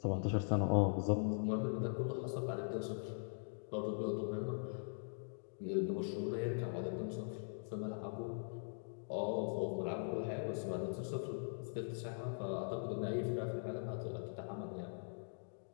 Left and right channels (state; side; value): silent; right; digital silence